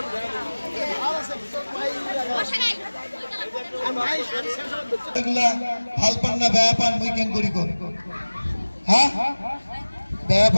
পান না বেয়া পান মুই কেন করি কর হ্যাঁ বেয়া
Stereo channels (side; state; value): both; inverted; correlation -1.00